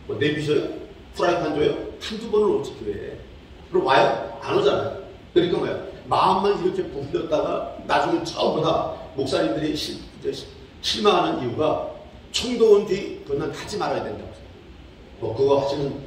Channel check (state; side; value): identical; both; correlation 1.00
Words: 뭐 내비셔요? 프라이팬 줘요? 한두 번을 오지 교회에. 그럼 와요? 안 오잖아요. 그러니까 뭐야? 마음만 이렇게 부풀렸다가 나중에 처음 보다 목사님들이 실망하는 이유가 총도 온 뒤 그건 하지 말아야 된다고. 뭐 그거 하시는